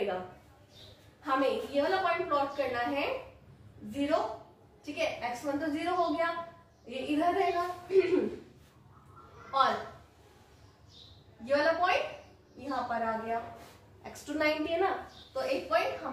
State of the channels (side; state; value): both; identical; correlation 1.00